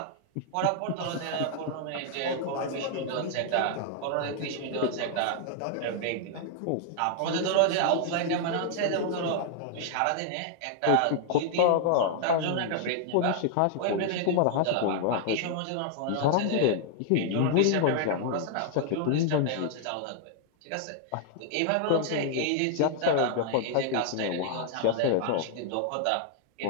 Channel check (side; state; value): both; different; correlation 0.00